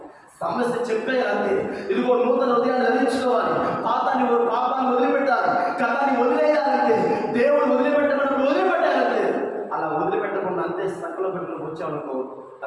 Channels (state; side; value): identical; both; correlation 1.00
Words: సమస్య చెప్పేయాలి. ఇదిగో నూతన హృదయాన్ని ధరించుకోవాలి, పాపాన్ని వదిలిపెట్టాలి, గతాన్ని వదిలేయాలంటే దేవుడు వదిలిపెట్టమని వదిలిపెట్టాలంటే. అలా వదిలిపెట్టకుండా అంతే సంకలో పెట్టుకుని వచ్చామనుకో,